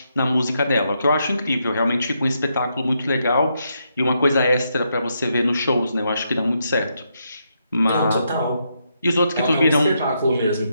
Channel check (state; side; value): inverted; both; correlation -0.80